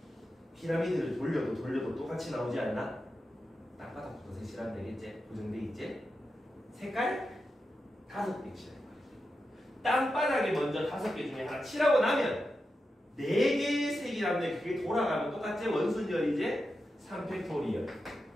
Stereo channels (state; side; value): normal; both; correlation 0.89